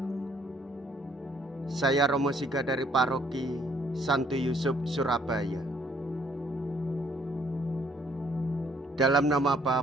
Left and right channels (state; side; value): normal; both; correlation 0.65